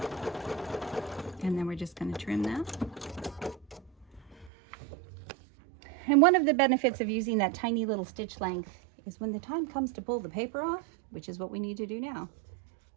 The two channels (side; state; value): left; drops out; at 4.5 s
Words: And then we're just going to trim that. And one of the benefits of using that tiny little stitch length is when the time comes to pull the paper off, which is what we need to do now,